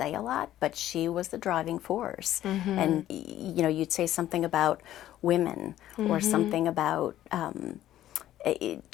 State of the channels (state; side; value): quieter; right; 13.0 dB